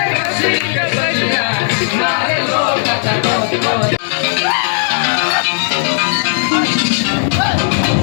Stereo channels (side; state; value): right; silent; digital silence